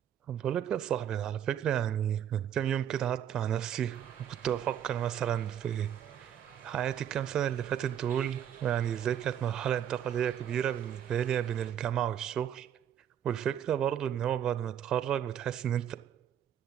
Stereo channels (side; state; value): left; quieter; 9.7 dB